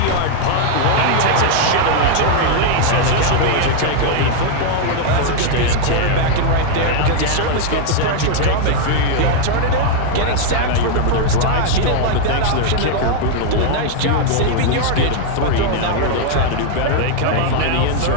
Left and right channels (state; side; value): different; both; correlation 0.00